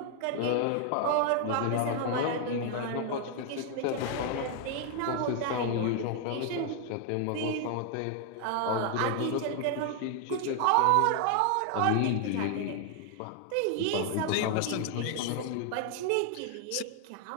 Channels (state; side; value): different; both; correlation 0.00